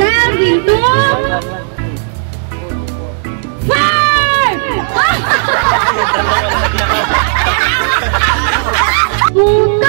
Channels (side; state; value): left; silent; digital silence